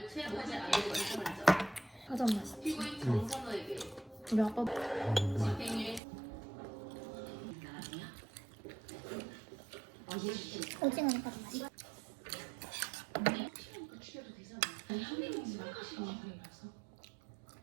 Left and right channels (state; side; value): drops out; left; at 6.0 s